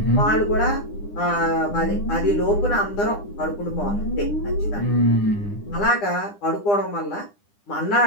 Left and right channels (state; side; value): late; right; 9.9 ms